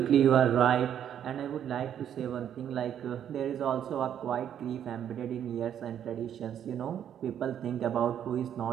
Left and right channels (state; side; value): quieter; left; 9.6 dB